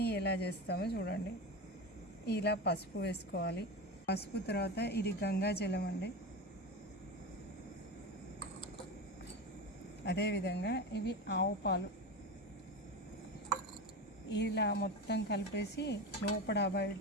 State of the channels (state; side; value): normal; both; correlation 0.23